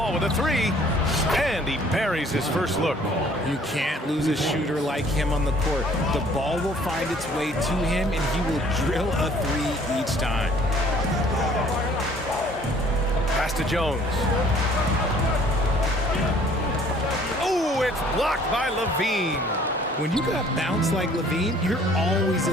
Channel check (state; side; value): normal; both; correlation 0.56